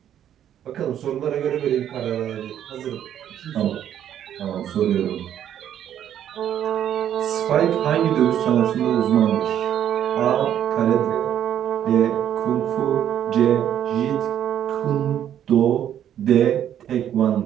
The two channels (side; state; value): left; quieter; 10.3 dB